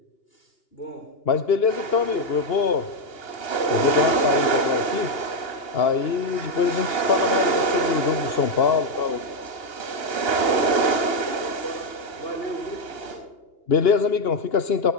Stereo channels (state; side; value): late; right; 2.8 ms